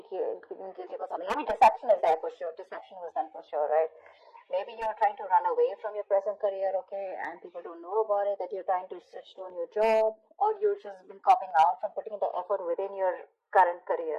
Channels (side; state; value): both; identical; correlation 1.00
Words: feeling guilty about something. I mean, deception is there for sure. Deception was done for sure, right? Maybe you're trying to run away from your present career, okay, and people don't know about it, that you're trying to switch to a new job, or you've just been copping out from putting the effort within your current